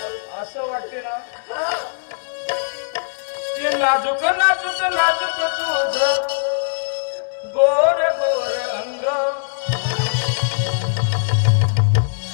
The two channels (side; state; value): right; silent; 65 dB below the other